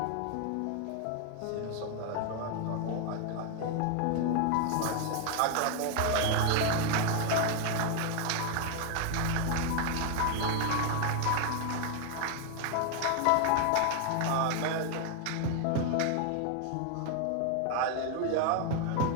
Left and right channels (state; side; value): different; both; correlation 0.00